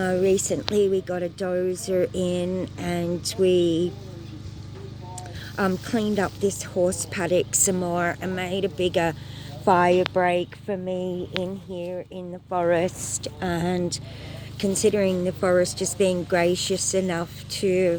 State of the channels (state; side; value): identical; both; correlation 1.00